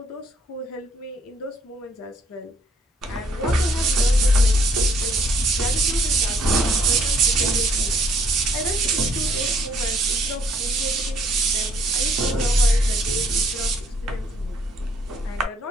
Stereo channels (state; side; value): normal; both; correlation 0.65